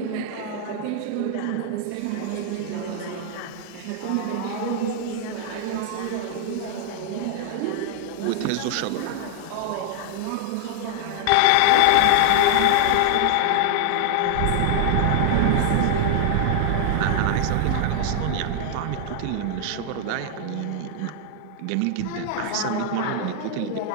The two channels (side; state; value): both; different; correlation 0.00